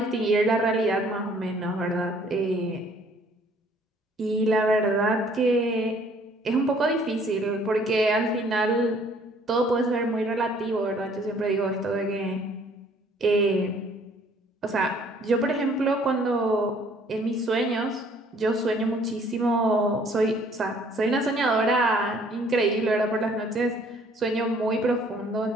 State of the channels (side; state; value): both; normal; correlation 0.59